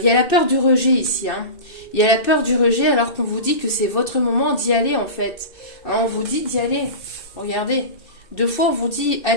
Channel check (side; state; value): right; late; 2.6 ms